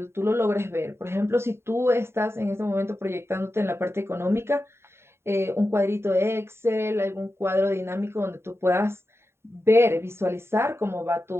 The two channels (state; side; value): late; left; 0.12 ms